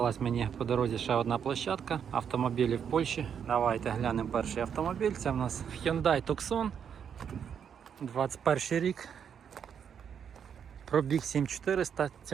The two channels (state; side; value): quieter; left; 7.8 dB